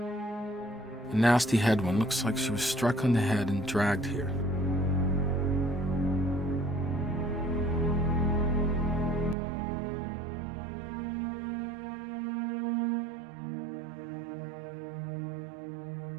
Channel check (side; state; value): left; drops out; at 9.3 s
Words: A nasty head one. Looks like she was struck on the head and dragged here.